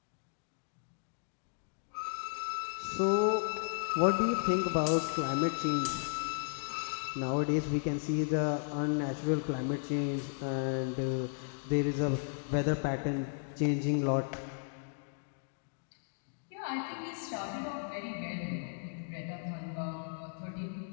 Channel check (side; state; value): right; silent; digital silence